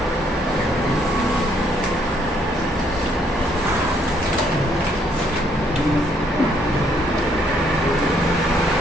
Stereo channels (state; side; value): normal; both; correlation 0.68